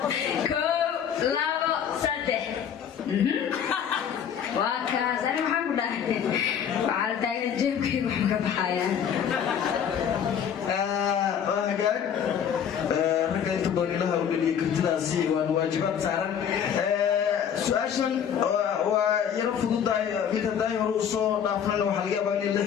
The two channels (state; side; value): quieter; right; 8.3 dB